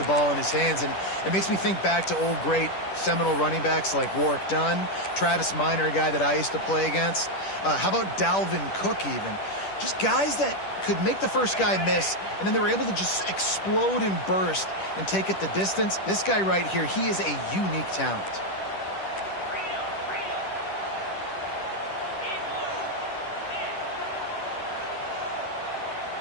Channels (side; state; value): right; late; 10 ms